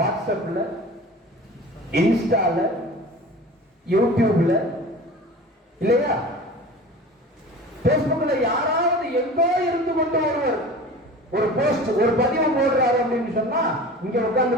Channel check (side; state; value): both; normal; correlation 0.38